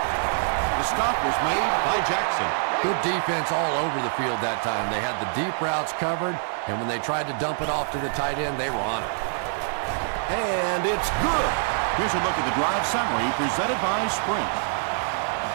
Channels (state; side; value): silent; left; 62 dB below the other